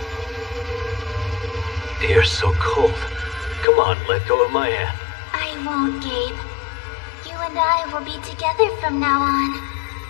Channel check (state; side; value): drops out; right; at 3.7 s